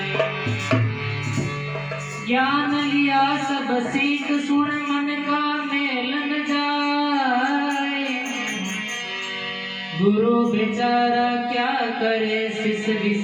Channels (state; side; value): identical; both; correlation 1.00